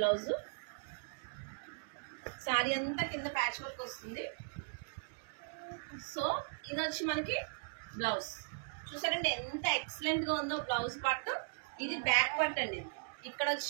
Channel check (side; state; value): left; silent; digital silence